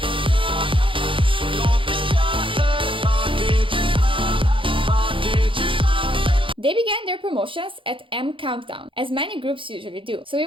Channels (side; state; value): left; late; 0.25 ms